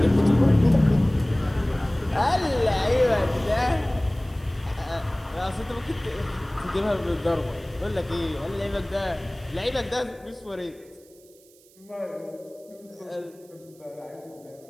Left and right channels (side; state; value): right; noise; hiss, 28 dB below the sound